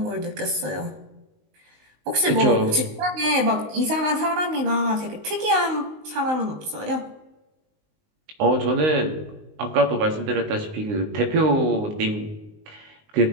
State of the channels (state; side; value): late; left; 19 ms